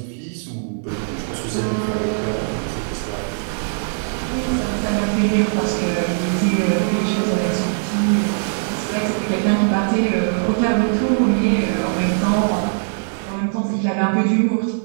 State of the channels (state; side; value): silent; left; digital silence